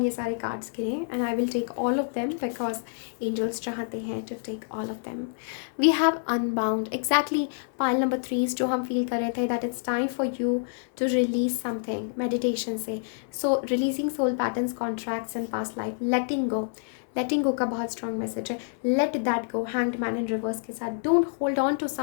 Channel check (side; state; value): right; silent; 60 dB below the other